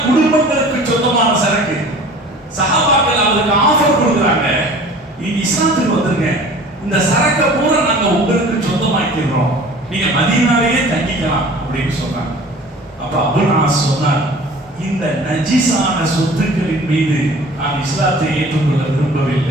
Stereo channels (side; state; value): both; normal; correlation 0.45